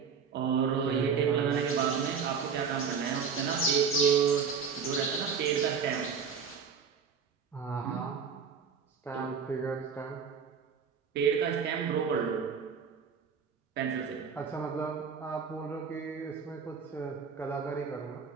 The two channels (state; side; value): quieter; left; 6.2 dB